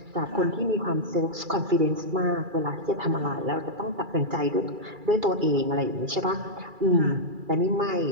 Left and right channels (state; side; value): late; left; 2.3 ms